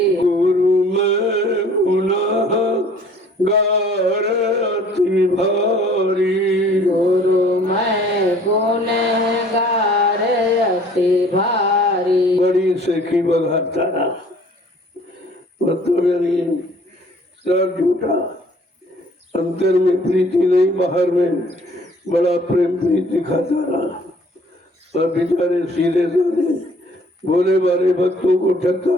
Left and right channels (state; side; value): normal; both; correlation 0.54